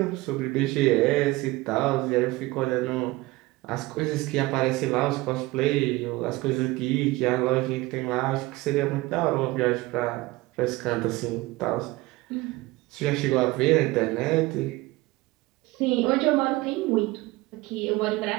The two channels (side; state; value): left; quieter; 20.5 dB